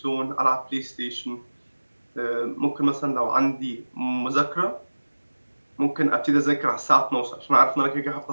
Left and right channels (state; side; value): inverted; both; correlation -1.00